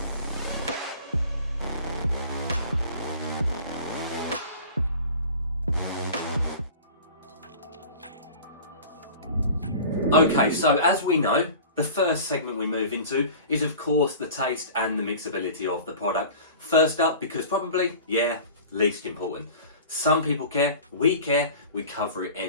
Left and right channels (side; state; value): both; inverted; correlation -0.40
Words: Okay, so as we know, the first segment we move into is of course the taste and the mixability of the product. First up, because probably, least important. Some people care, we cover it